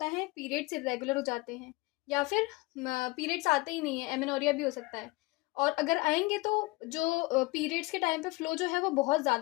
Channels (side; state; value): right; quieter; 23.0 dB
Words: है, पीरियड्स इरेगुलर हो जाते हैं या फिर पीरियड्स आते ही नहीं है, एमेनोरिया भी हो सकता है। और अगर आएंगे तो जो पीरियड्स के टाइम पे फ्लो जो है वो बहुत